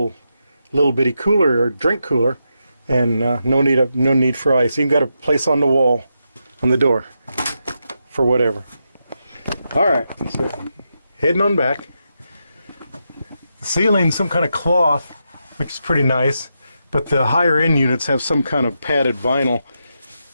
bitty cooler or drink cooler, and no need for ice. Even got a place on the wall, on the door, for whatever. All right, so heading on back. The ceiling, some kind of cloth, which is pretty nice, but the higher end units have some kind of padded vinyl.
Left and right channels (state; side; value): inverted; both; correlation -0.85